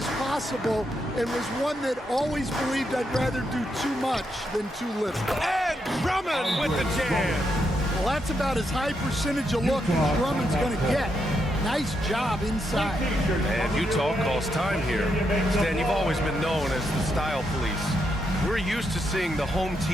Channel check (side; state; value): both; normal; correlation 0.81